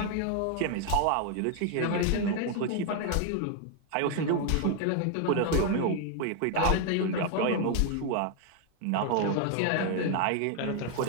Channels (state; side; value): different; both; correlation 0.01